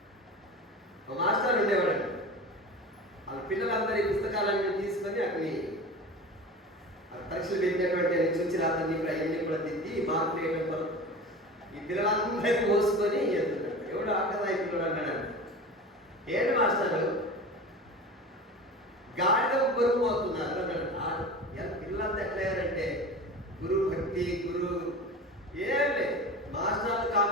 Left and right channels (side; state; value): both; normal; correlation 0.33